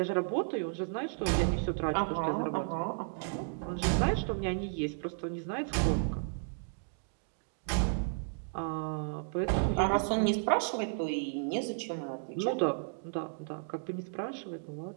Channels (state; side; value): silent; left; digital silence